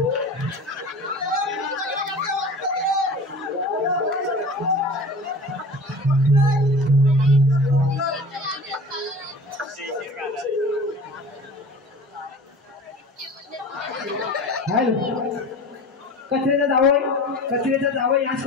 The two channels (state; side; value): normal; both; correlation 0.38